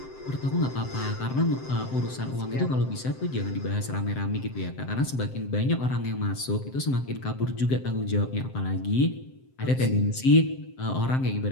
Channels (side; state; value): right; late; 7.7 ms